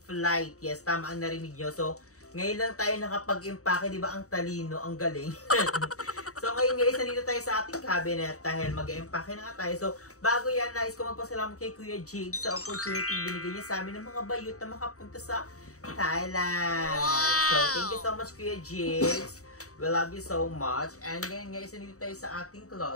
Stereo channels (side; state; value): right; late; 0.65 ms